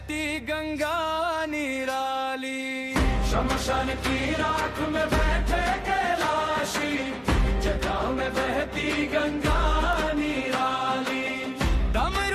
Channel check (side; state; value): both; identical; correlation 1.00